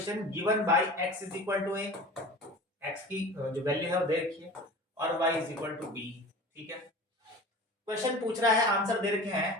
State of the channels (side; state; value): both; normal; correlation 0.38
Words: given by x is equal to a, x की जो वैल्यू है वो दे रखी है, और y is equal to b। ठीक है क्वेश्चन पूछ रहा है, आंसर दे रखे